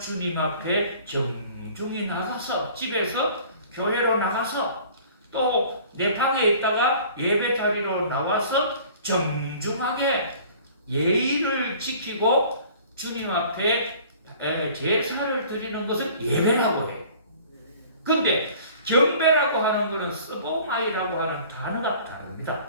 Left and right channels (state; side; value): inverted; both; correlation -0.49